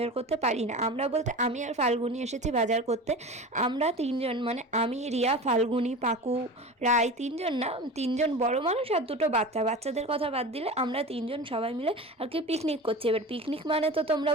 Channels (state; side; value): normal; both; correlation 0.32